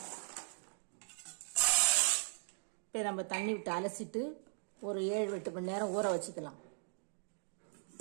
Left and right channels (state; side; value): silent; left; digital silence